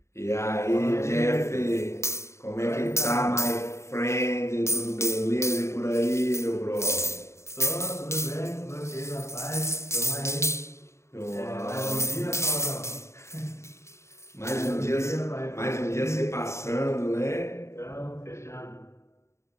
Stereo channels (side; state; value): right; late; 0.14 ms